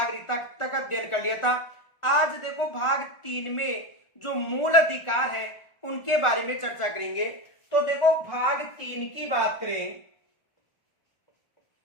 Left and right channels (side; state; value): right; late; 1.4 ms